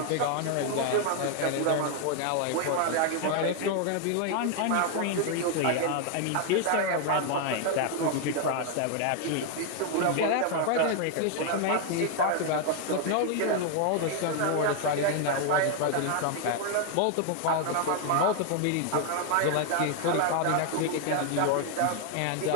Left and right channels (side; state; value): both; different; correlation 0.00